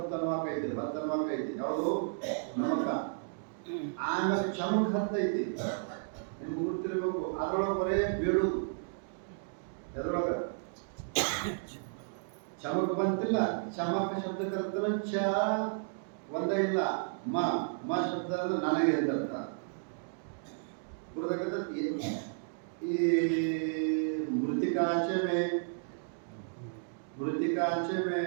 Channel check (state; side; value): silent; left; digital silence